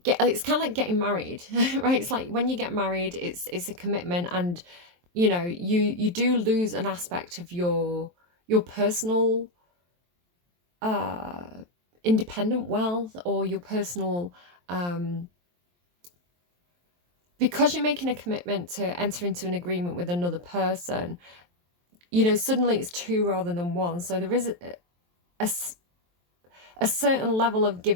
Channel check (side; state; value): left; late; 23 ms